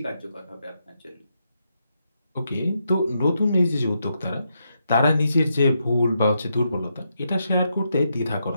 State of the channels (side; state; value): both; inverted; correlation -0.82